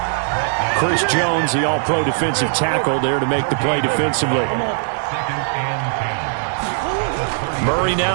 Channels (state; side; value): silent; left; digital silence